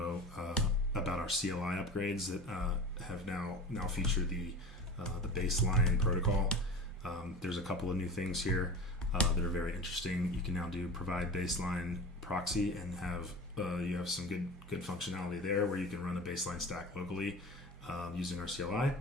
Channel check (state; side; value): normal; both; correlation 0.34